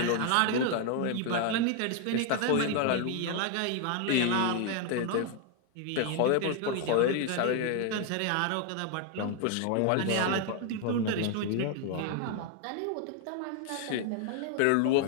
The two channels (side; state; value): both; different; correlation 0.01